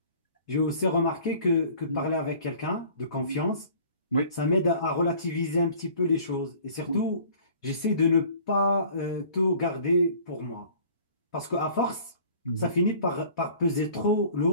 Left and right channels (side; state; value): both; inverted; correlation -0.50